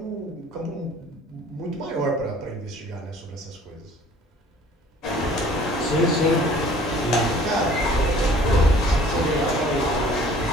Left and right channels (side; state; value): both; normal; correlation 0.52